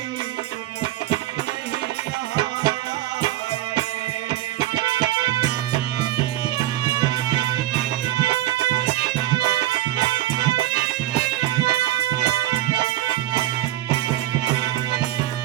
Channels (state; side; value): quieter; left; 14.9 dB